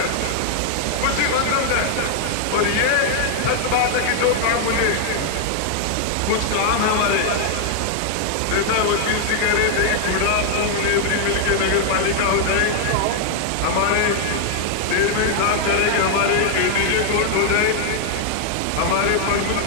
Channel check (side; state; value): both; different; correlation 0.00